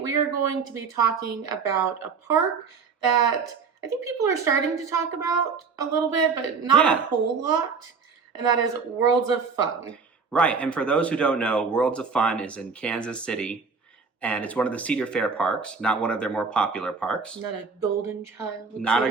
are going to be talking about a park that I think people are starting to talk about a little bit, but not a whole lot. And that is Worlds of Fun. Right, and for those who don't know, Worlds of Fun is in Kansas City, and it's one of the Cedar Fair parks, not one of their more popular parks. Not a golden child. Not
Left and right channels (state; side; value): quieter; left; 5.3 dB